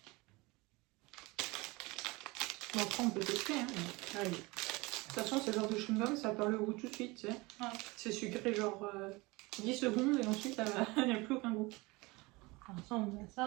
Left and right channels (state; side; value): quieter; left; 23.7 dB